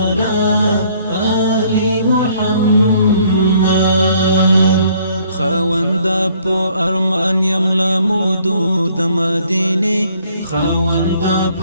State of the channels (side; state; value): both; inverted; correlation -0.62